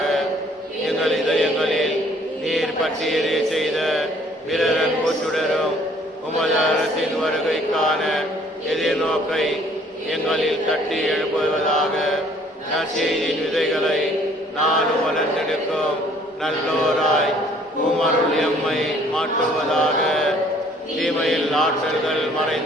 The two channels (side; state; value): both; normal; correlation 0.59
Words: எங்கள் இதயங்களில் நீர் பற்றி எரிய செய்த பிறர் அன்பு சுடரும் உமது அரசின் வருகைக்கான எதிர்நோக்கை எங்களில் தட்டி எழுப்புவதாக நற்செய்தியின் விதைகளை நானும் வளர்ந்தெடுக்கும் நல்லோராய் உமருள் எம்மை மாற்றுவதாக. தீமையில் ஆற்றல்கள்